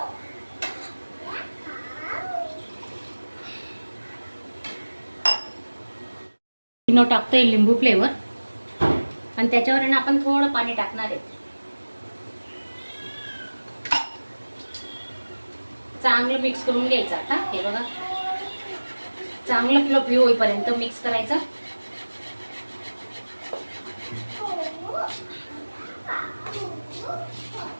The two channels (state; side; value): inverted; both; correlation -1.00